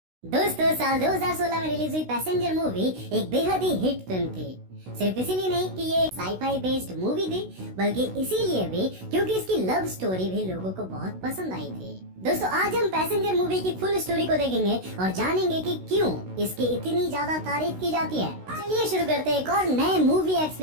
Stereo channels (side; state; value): left; late; 16 ms